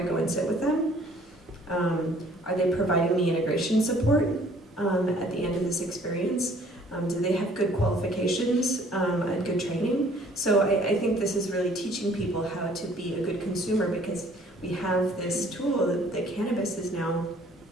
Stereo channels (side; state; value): both; normal; correlation 0.57